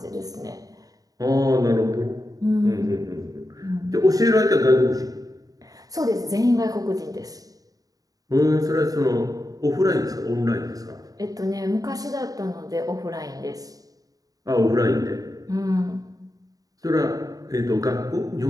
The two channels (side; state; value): left; late; 0.18 ms